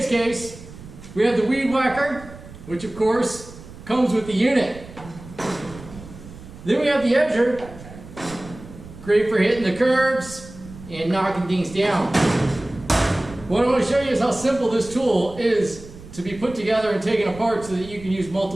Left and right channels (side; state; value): right; noise; rumble, 17 dB below the sound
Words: case, we have the weed whacker, which of course comes with the unit. Then we have the edger, great for hitting the curbs and knocking things down. What I want to show you is how simple this tool is to be put together and taken apart so that you can use